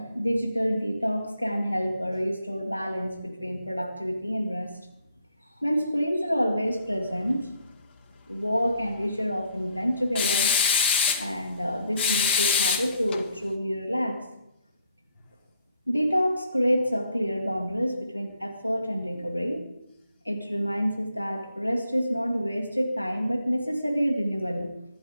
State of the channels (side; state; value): both; inverted; correlation -0.71